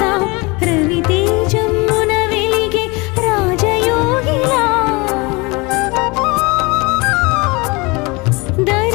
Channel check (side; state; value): right; quieter; 26.0 dB